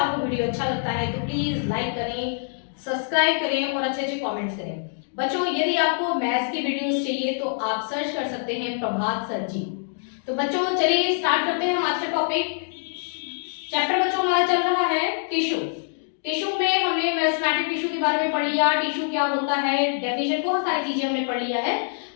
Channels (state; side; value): silent; right; digital silence